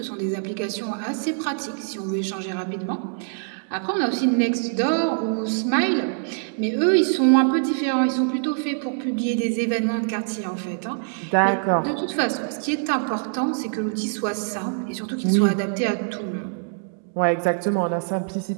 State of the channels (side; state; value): left; silent; digital silence